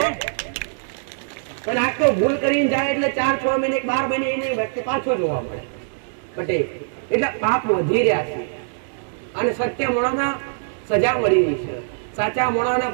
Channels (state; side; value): silent; left; digital silence